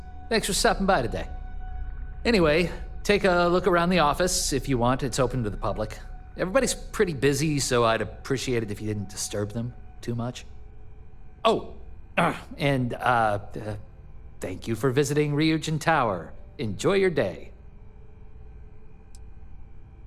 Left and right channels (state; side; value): identical; both; correlation 1.00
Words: Thanks for stopping by today. Anyway, take a look around the office if you want. It's open to the public. Everybody's pretty busy, so I'd appreciate it if you didn't disturb them too much. Oh, and thank you for visiting Ryujin Tower. Enjoy your day.